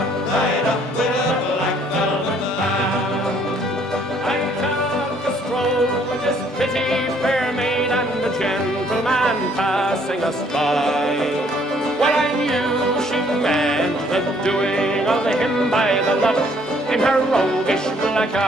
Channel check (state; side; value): normal; both; correlation 0.63